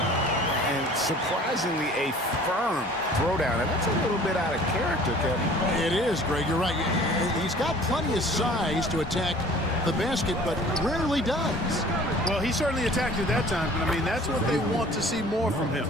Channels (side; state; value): both; normal; correlation 0.49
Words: surprisingly, a firm throwdown. And that's a little bit out of character, Kevin. It is, Greg. You're right. He's got plenty of size to attack the basket, but rarely does. Well, he certainly attacked it that time. But, I mean, that's what they want to see more from him.